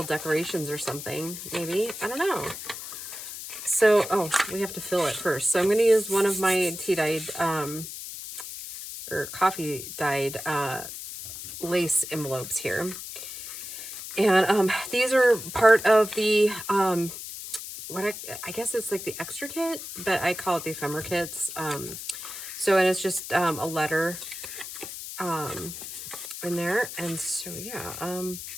decorations or something, maybe. I don't know. So, oh, we have to fill it first. So I'm going to use one of my tea-dyed, or coffee-dyed lace envelopes here. And these are part of the, what I guess it's like the extra kit, but I call it the ephemera kits. So, and it's just a letter in there. And so, yeah,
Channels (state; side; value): noise; left; hiss, 9 dB below the sound